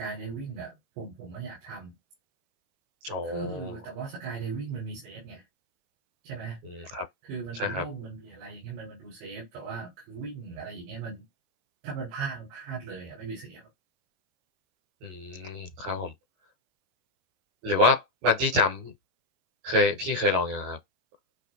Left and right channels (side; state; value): left; late; 22 ms